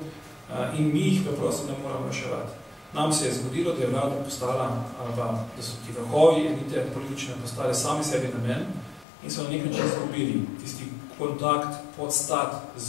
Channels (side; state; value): right; drops out; at 9.1 s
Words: in mi jih preprosto ne moramo reševati. Nam se je zgodilo, da je vlada postala, ali pa da so ti vrhovi elite politične postale sami sebi namen in so na nek način izgubili tisti kontakt, podstat